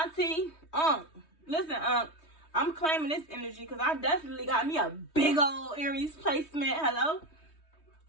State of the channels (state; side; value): late; right; 3.2 ms